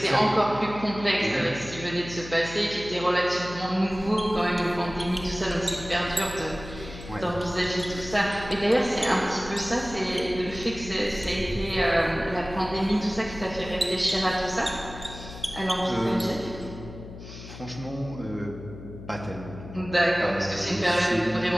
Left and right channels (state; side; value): noise; left; hum, 14 dB below the sound